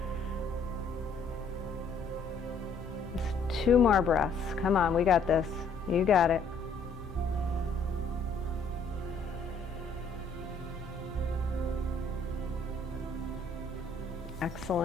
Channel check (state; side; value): quieter; right; 3.7 dB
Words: Just 2 more breaths. Come on, we got this. You got it.